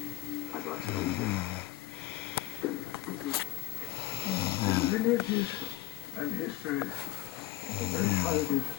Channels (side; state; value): right; quieter; 16.8 dB